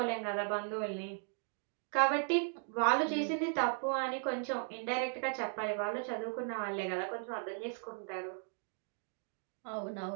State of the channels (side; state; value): left; silent; 53 dB below the other